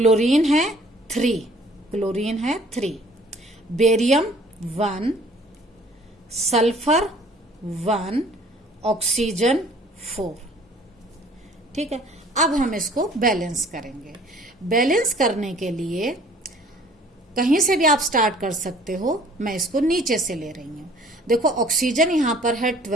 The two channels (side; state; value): both; normal; correlation 0.54